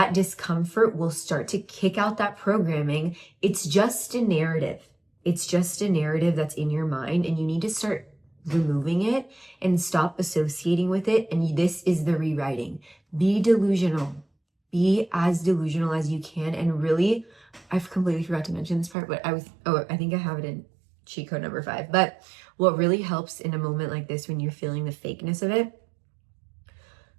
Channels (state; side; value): drops out; left; at 18.9 s